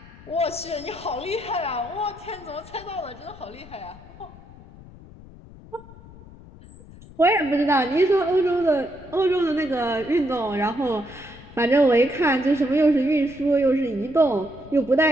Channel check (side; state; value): left; noise; rumble, 19 dB below the sound